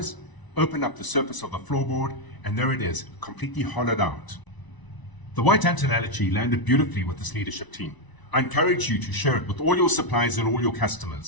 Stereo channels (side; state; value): right; late; 1.0 ms